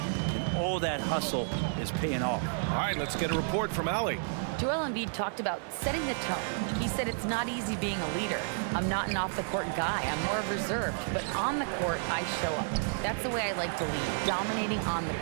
all that hustle is paying off. All right, let's get a report from Allie. Joel Embiid talked about setting the tone. He said it's not easy being a leader. I'm not an off-the-court guy. I'm more reserved. But on the court, I show up. That's the way I like to lead, dominating on the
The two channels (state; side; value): silent; left; digital silence